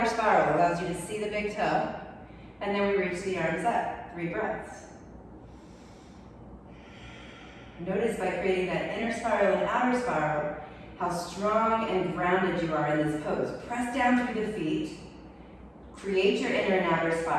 spiral allows you to see the big toe. And then we reach the arms up. 3 breaths. Notice by creating that inner spiral and outer spiral, how strong and grounded you are in this pose. Press down through the feet. Create your inner and outer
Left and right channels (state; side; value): identical; both; correlation 1.00